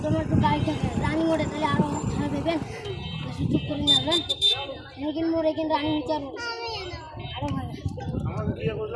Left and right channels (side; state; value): both; identical; correlation 1.00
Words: তোমার একটু গাড়ি থাকে রানিং মোড়ে তাহলে আরো খারাপ দেবেন সুযোগ করে নেবেন এখানে মোড়ে কিন্তু রানিং হচ্ছে আরো ভালো